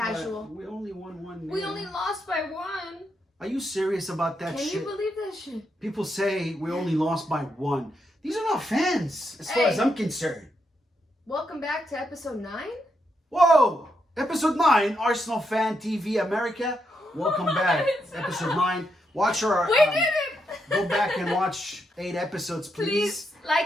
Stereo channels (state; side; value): normal; both; correlation 0.81